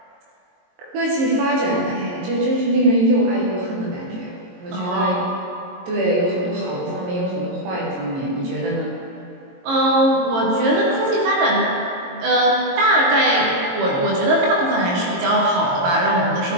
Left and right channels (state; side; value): late; left; 22 ms